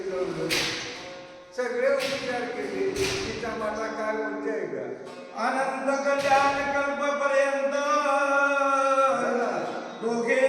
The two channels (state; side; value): identical; both; correlation 1.00